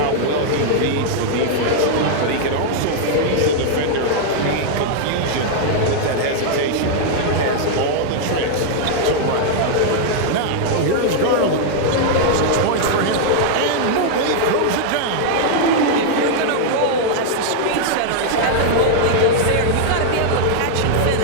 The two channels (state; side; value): different; both; correlation -0.01